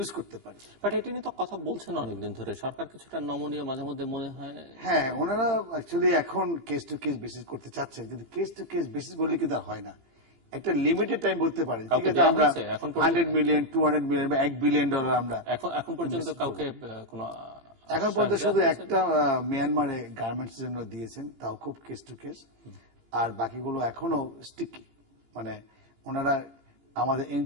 করতে পারি। বাট এটা নিয়ে তো কথা বলছেন অনেকদিন ধরে, সরকার কিছুটা নমনীয় মাঝে মধ্যে মনে হয়। হ্যাঁ, ওনারা অ্যাকচুয়ালি এখন কেস টু কেস বেসিস করতে চাচ্ছেন, কিন্তু কেস টু কেস বেসিস বললে কিন্তু হয় না। একটা লিমিটেড টাইম বলতে পারেন, ঠিক আছে, আমরা 100 মিলিয়ন 200 মিলিয়ন বা $1 বিলিয়ন আমরা এখন পর্যন্ত কাউকে কোনো এখন পর্যন্ত শুধু একটা মিয়ানমারে গার্মেন্টস জন্য দিয়েছেন, তাও খুব কেস টু কেস। আর বাকিগুলো এখনো স্টিকি, মানে ওনারা আমাদের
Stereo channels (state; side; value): late; left; 18 ms